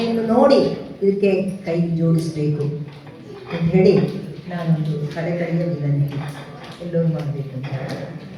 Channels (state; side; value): identical; both; correlation 1.00